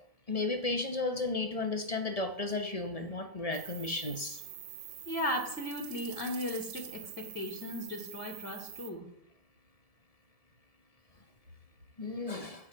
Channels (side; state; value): right; late; 1.7 ms